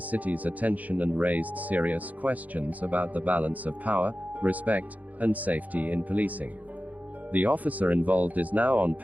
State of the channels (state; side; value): late; left; 0.077 ms